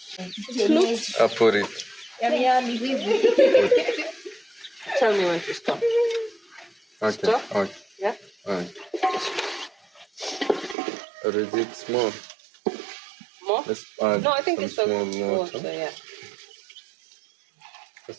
I put it. Tell me when to stop. Okay. Stop? Okay. Yeah? Alright. Or is it small? More? Let's add No, I think some it's small okay. water. Yeah.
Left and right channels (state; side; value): drops out; left; at 10.8 s